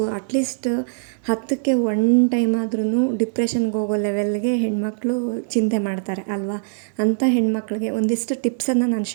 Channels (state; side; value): silent; left; digital silence